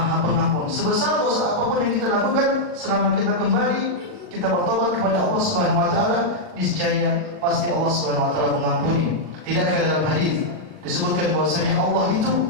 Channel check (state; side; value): late; left; 39 ms